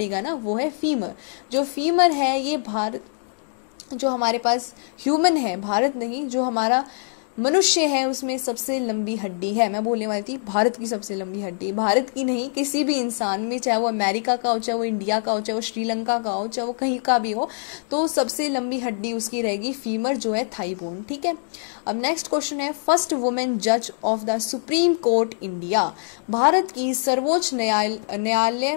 ना, वो है फीमर। जो फीमर है ये भारत, जो हमारे पास ह्यूमन है, भारत नहीं, जो हमारा मनुष्य है उसमें सबसे लंबी हड्डी है। मैं बोलने वाली थी भारत की सबसे लंबी हड्डी, भारत की नहीं, किसी भी इंसान में, चाहे वो अमेरिका का हो, चाहे वो इंडिया का हो, चाहे वो श्रीलंका का हो, चाहे वो कहीं का भी हो, तो सबसे लंबी हड्डी उसकी रहेगी फीमर, जो है थाई बोन। ठीक है, अब नेक्स्ट क्वेश्चन है फर्स्ट वुमेन जज of the supreme court India. Bharat की सर्वोच्च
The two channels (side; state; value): right; silent; digital silence